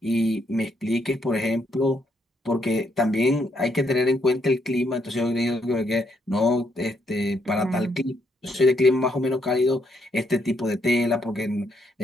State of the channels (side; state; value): both; normal; correlation 0.75